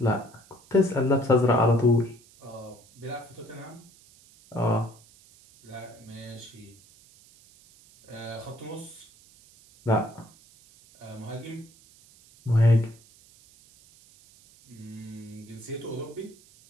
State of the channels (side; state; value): right; noise; hiss, 26 dB below the sound